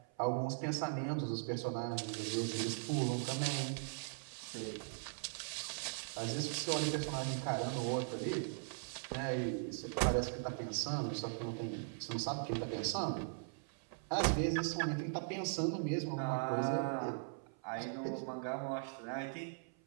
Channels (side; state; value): left; silent; 51 dB below the other